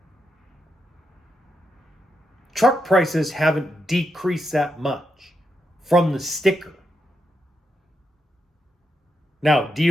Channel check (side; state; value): both; normal; correlation 0.83